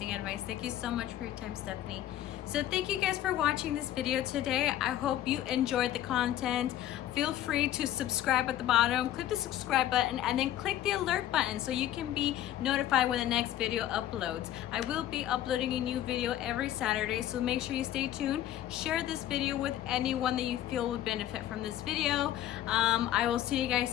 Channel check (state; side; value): quieter; right; 12.5 dB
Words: advice. Thank you so much for your time, Stephanie. So thank you guys for watching this video today. I hope you enjoyed the content. Feel free to subscribe at the bottom. Click the subscribe button and then click the alert button so you can be notified when the next video uploads. I will be uploading a new video every Saturday, so make sure you stay tuned. Share this video with anyone that you feel would benefit from this video. I will see you guys